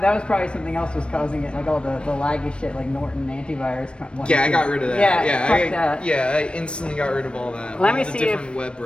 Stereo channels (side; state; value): right; late; 0.057 ms